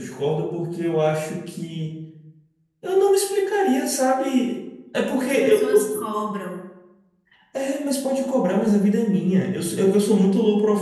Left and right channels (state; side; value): identical; both; correlation 1.00